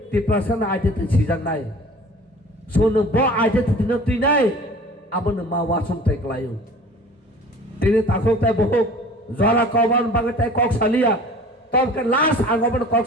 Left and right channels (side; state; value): both; normal; correlation 0.44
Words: tipe saru aja tu sijang nai. Sonu bo aja tu tini tu nai. Abon ma wasum tai klayu tini takok tai bohok zara kawan bagai tai kok salia tom ke last angobon kok